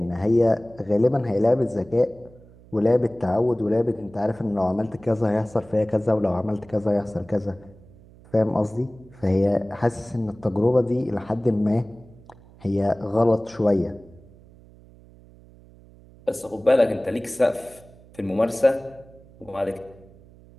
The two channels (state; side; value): noise; right; hum, 24 dB below the sound